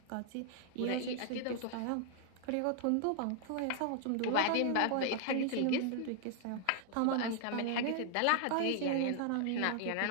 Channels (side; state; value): both; different; correlation 0.00